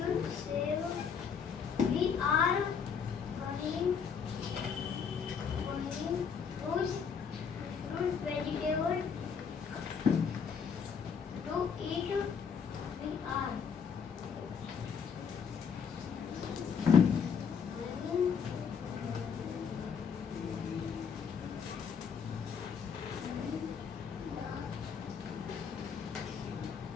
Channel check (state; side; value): quieter; right; 6.6 dB